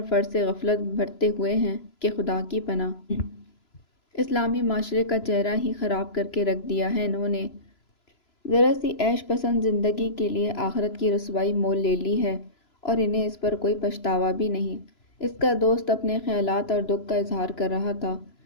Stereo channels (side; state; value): right; late; 3.0 ms